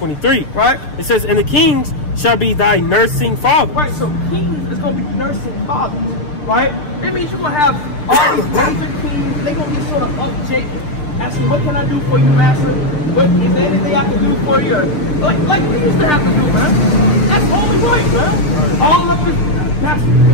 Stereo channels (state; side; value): late; right; 6.6 ms